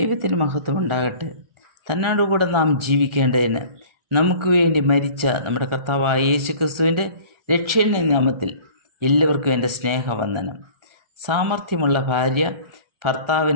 മഹത്വം ഉണ്ടാകട്ടെ. തന്നോടുകൂടെ നാം ജീവിക്കേണ്ടതിന് നമുക്ക് വേണ്ടി മരിച്ച നമ്മുടെ കർത്താവായ യേശുക്രിസ്തുവിൻ്റെ രക്ഷയുടെ നാമത്തിൽ എല്ലാവർക്കും എൻ്റെ സ്നേഹവന്ദനം. സാമർഥ്യമുള്ള ഭാര്യ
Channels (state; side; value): late; left; 1.4 ms